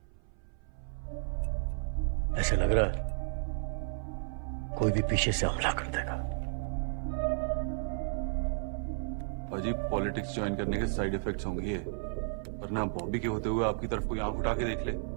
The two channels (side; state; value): left; silent; 56 dB below the other